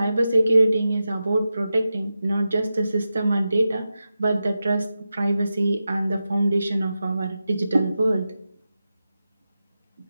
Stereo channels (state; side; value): inverted; both; correlation -0.92